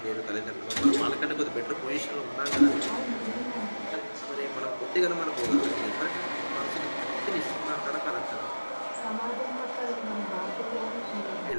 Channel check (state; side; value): inverted; both; correlation -1.00